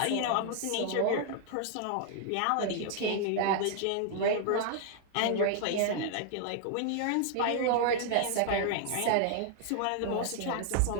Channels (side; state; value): both; different; correlation 0.00